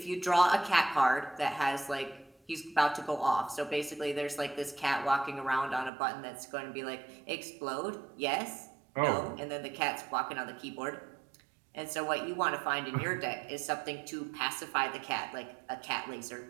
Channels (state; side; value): drops out; left; at 5.9 s